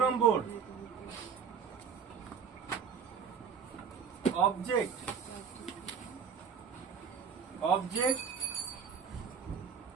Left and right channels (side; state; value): left; quieter; 6.7 dB